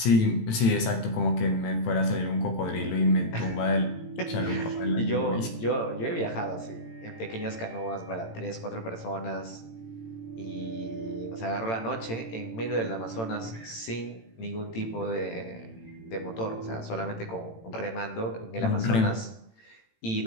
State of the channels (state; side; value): late; right; 18 ms